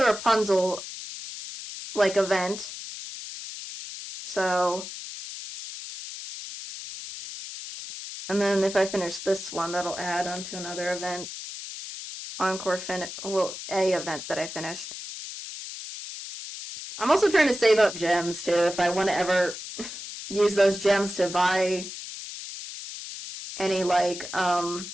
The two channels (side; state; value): left; noise; hiss, 10 dB below the sound